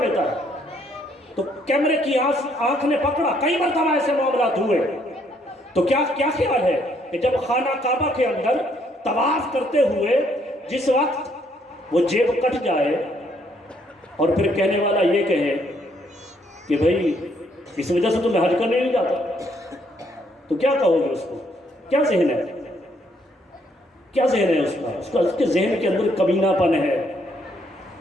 ہے۔ تو کیمرے کی آنکھ نے پکڑا، کئی مرتبہ ایسے معاملات ہوئے۔ تو کیا خیال ہے کہ جب خانہ کعبہ کے اندر طواف کرتے ہوئے جس وقت وہ جیب کٹ جائے اور پھر کہنے والا یہ کہے کہ بھئی اس وجہ سے تو میں حج کرنے نہیں جاتا، تو کیا کہو گے اس کو؟ کیا ذہن ہے؟ کیا ذہن ہے اس کا اس کے ذہن کے اندر کمینہ پن ہے،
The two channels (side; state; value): both; normal; correlation 0.69